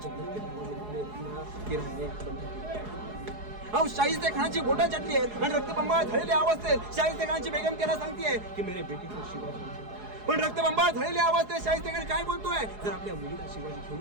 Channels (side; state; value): left; late; 4.8 ms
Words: जन्नत के शाहिस्ते खानाची बोटं चटली आहेत आणि रक्तबंबाळ झालेल्या अवस्थेत शाहिस्ते खानची बेगम त्याला सांगतेय की मेरे बेटी को शिवाजी. पण रक्तबंबाळ झालेल्या अवस्थेत शाहिस्ते खान काय बोलतोय? जर आपल्या मुलीला शिवाजी घेऊन